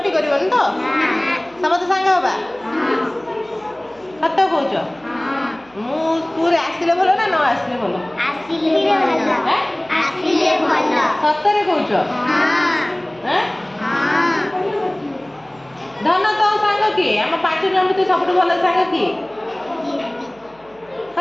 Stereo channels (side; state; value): right; noise; hum, 29 dB below the sound